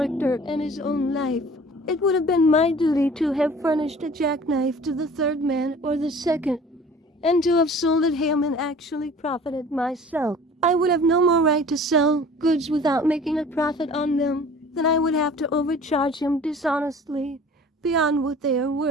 and his own life. It would have been my duty to have furnished a jackknife to the third man or the second, and to have sold at him and actually profited myself. I would have no more right to sell goods without making a profit on them than I would have to overcharge him dishonestly beyond what they are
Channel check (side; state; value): both; normal; correlation 0.46